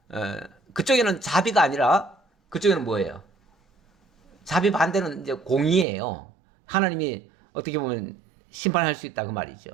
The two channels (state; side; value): drops out; left; at 5.9 s